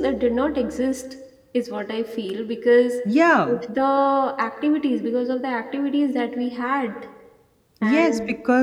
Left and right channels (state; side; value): identical; both; correlation 1.00